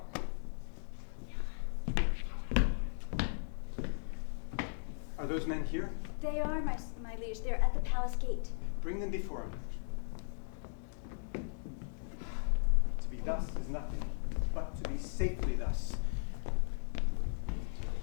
Are those men here? They are, my liege. They're at the palace gate. Bring them before him. To be thus is nothing, but to be safely thus.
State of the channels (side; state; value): right; silent; digital silence